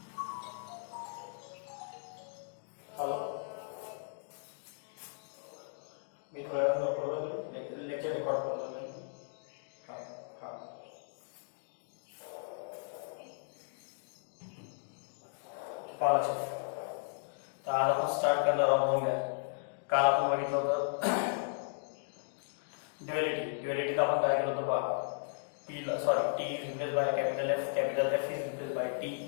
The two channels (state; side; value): silent; right; digital silence